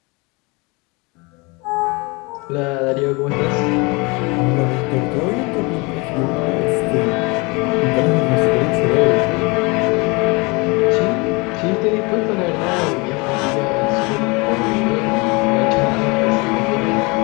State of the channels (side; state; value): right; quieter; 27.5 dB